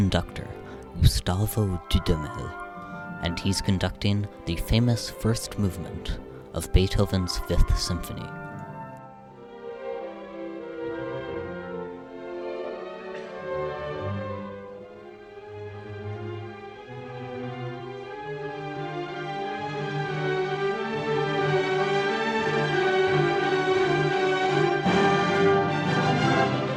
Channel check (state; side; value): identical; both; correlation 1.00